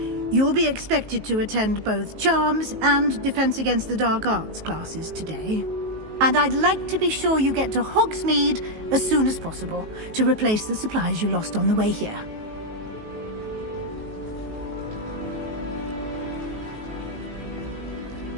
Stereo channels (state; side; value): late; left; 19 ms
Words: You'll be expected to attend both Charms and Defense Against the Dark Arts classes today. And I'd like to be sure you get to Hogsmeade as soon as possible to replace the supplies you lost on the way here.